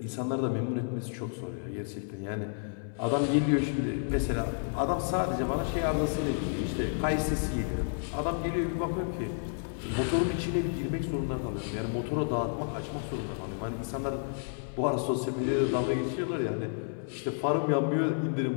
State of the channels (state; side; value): silent; right; 57 dB below the other